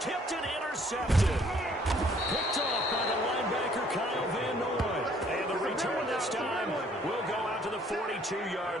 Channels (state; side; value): normal; both; correlation 0.61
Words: and intercepted. Picked off by the linebacker, Kyle Van Noy. And the return this time will go out to the